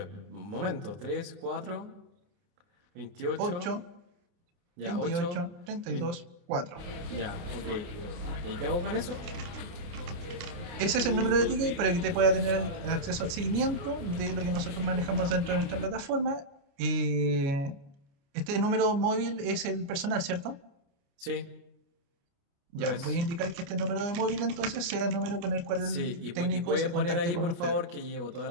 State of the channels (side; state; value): left; late; 29 ms